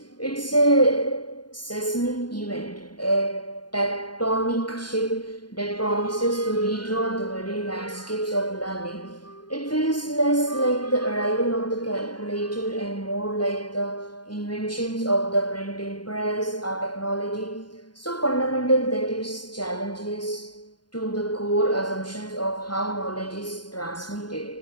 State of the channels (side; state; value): right; late; 0.70 ms